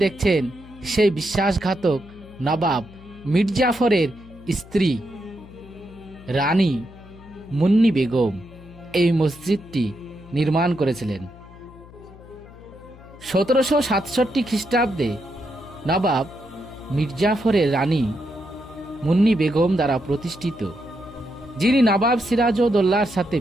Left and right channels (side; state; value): left; noise; hum, 20 dB below the sound